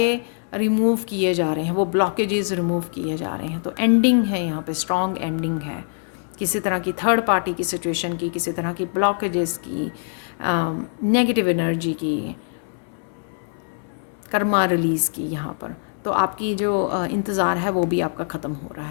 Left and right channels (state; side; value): silent; right; 63 dB below the other